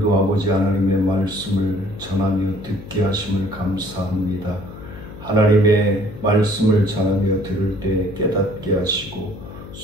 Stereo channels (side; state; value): left; noise; hum, 14 dB below the sound